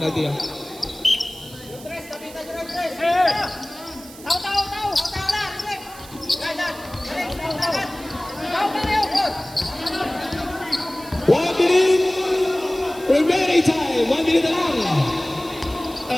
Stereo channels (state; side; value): noise; right; hiss, 18 dB below the sound